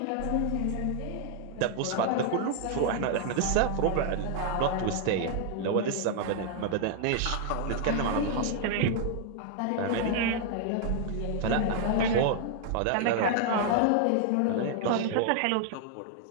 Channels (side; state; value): both; different; correlation 0.00